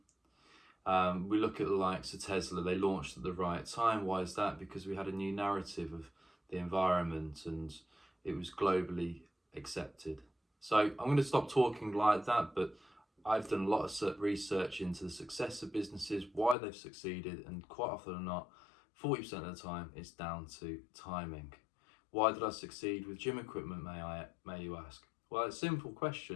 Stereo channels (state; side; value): drops out; right; at 16.6 s